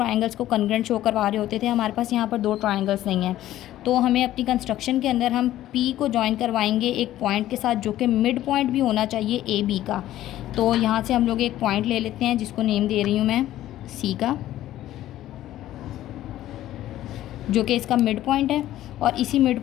को कंग्रेंट शो करवा रहे होते थे। हमारे पास यहाँ पर दो ट्रायंगल्स नहीं हैं, तो हमें अपनी कंस्ट्रक्शन के अंदर हम पी को ज्वाइन करवाएंगे एक पॉइंट के साथ जो कि मिड पॉइंट भी होना चाहिए ए बी का। तो यहाँ से हम लोग एक पॉइंट ले लेते हैं जिसको नेम दे रही हूँ मैं सी का, जो कि इसका मिड पॉइंट है, और इसी मिड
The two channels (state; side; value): quieter; right; 13.7 dB